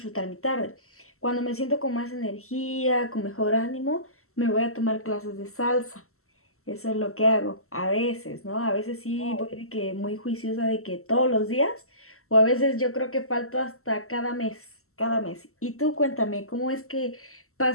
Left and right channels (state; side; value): late; right; 0.63 ms